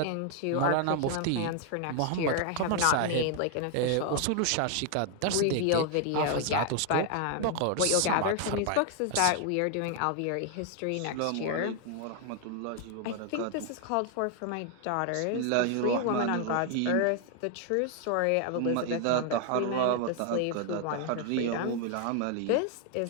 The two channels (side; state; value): both; different; correlation 0.00